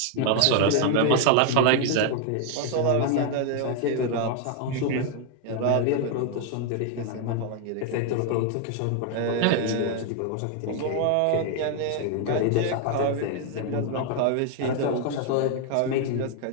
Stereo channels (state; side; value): different; both; correlation 0.00